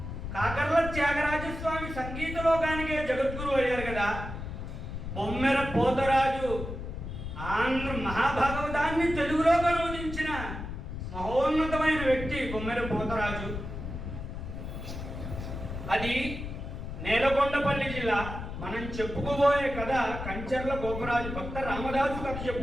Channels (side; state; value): left; noise; rumble, 7 dB below the sound